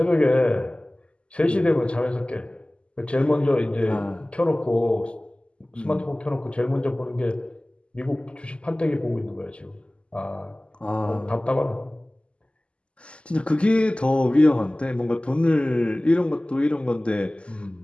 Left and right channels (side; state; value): right; late; 0.054 ms